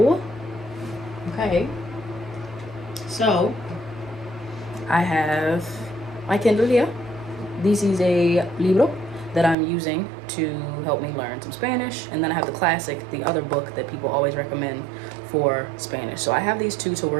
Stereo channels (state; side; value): drops out; left; at 9.6 s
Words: okay, so I have my Kindle here. This is a libro that I'm using to help me learn some Spanish. And then I have the classic, the other book that people always recommend for Spanish. So I have these two to